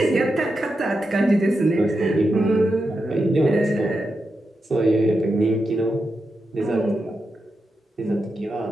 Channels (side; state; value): both; normal; correlation 0.87